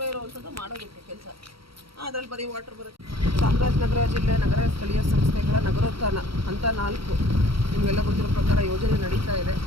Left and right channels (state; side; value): late; left; 0.75 ms